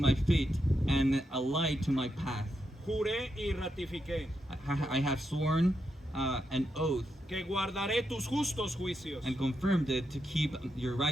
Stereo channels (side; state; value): both; normal; correlation 0.84